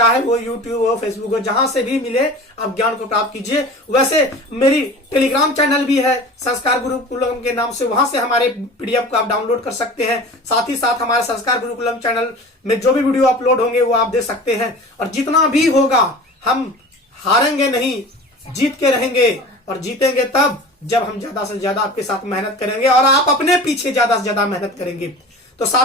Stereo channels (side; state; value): both; normal; correlation 0.38